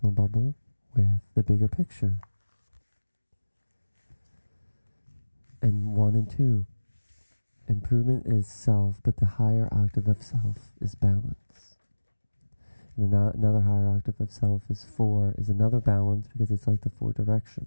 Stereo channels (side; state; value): both; inverted; correlation -1.00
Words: bubble with the bigger picture. And 1 and 2, improvement is self, but the higher octave of self is balance. And another higher octave of self is 4, is another balance, because it's like the 4